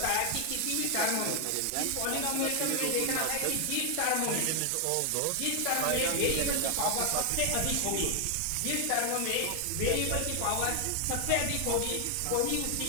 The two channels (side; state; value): both; different; correlation 0.00